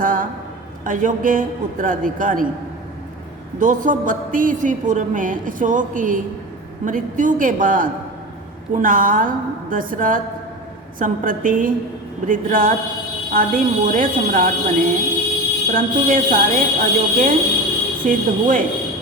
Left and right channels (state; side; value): normal; both; correlation 0.29